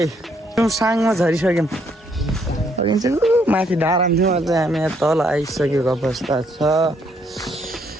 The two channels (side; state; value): both; normal; correlation 0.71